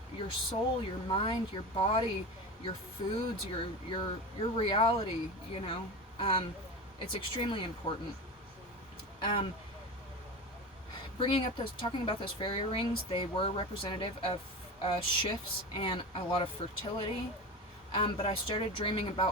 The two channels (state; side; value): normal; both; correlation 0.27